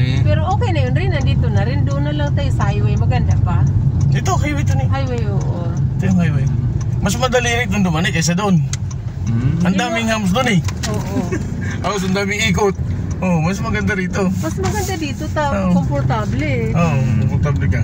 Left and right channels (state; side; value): identical; both; correlation 1.00